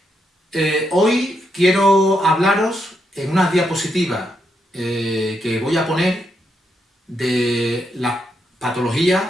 Hoy quiero hablaros en unas diapositivas que voy a poner de la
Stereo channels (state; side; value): normal; both; correlation 0.80